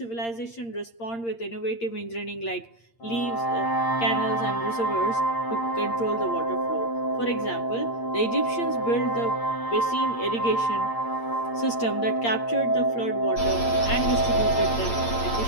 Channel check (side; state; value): right; late; 8.7 ms